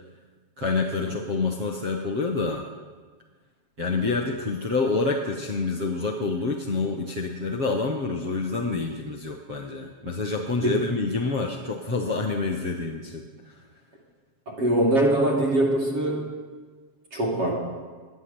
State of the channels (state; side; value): late; left; 7.4 ms